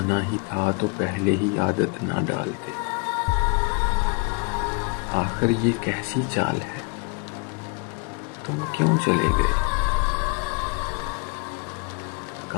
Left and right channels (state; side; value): quieter; right; 31.2 dB